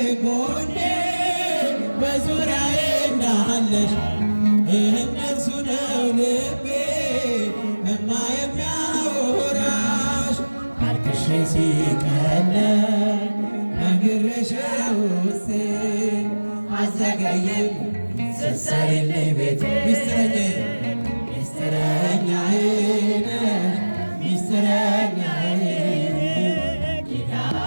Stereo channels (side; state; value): both; inverted; correlation -1.00